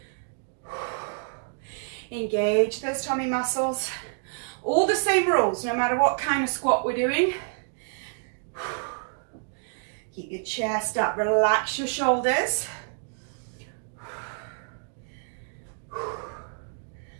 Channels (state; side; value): silent; left; digital silence